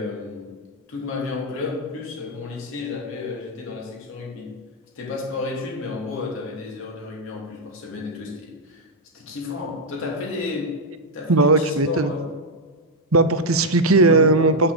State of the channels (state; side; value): normal; both; correlation 0.01